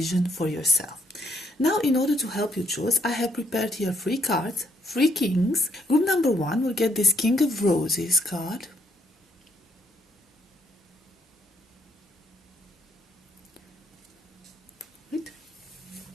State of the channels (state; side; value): normal; both; correlation 0.72